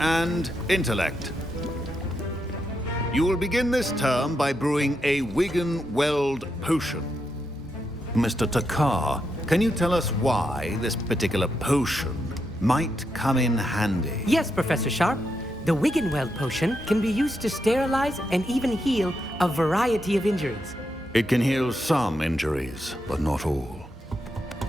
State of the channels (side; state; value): both; normal; correlation 0.83